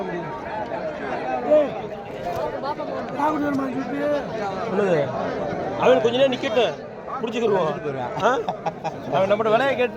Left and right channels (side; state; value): both; identical; correlation 1.00